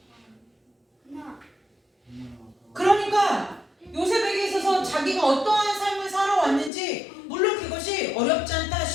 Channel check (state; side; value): drops out; right; at 6.7 s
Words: 그러니까 요셉에게 있어서 자기가 어떠한 삶을 살아왔는지, 물론 그것이 어렵지 않다,